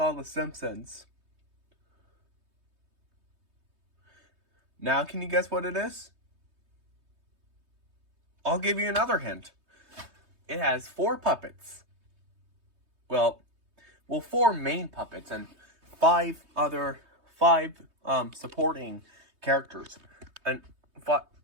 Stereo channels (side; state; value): left; late; 3.2 ms